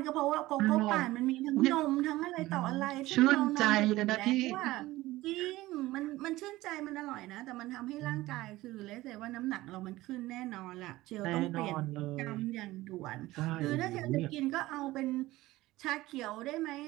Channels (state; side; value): quieter; left; 17.8 dB